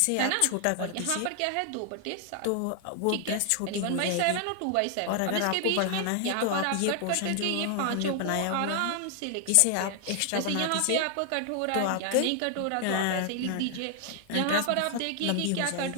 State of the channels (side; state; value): both; different; correlation 0.00